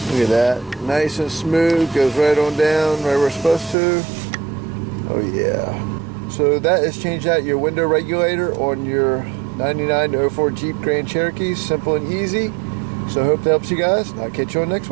Look at that. Nice and smooth, goes right on down, right where it's supposed to. Oh yeah. So that is changed out your window regulator on your 99 to 04 Jeep Grand Cherokee. Simple and easy. So I hope that helps you guys. I'll catch you on the next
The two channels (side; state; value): left; drops out; at 3.8 s